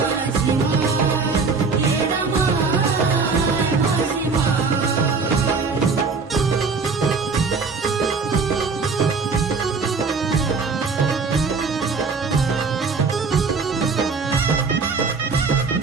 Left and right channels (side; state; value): left; quieter; 4.7 dB